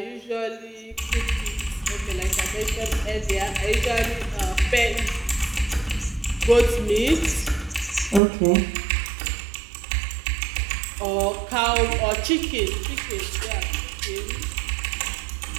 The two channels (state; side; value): drops out; left; at 8.2 s